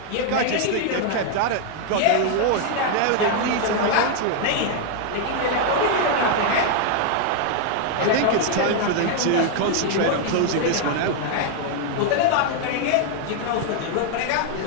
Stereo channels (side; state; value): both; different; correlation 0.00